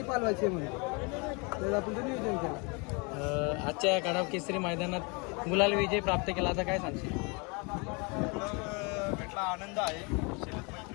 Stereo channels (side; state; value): right; quieter; 30.9 dB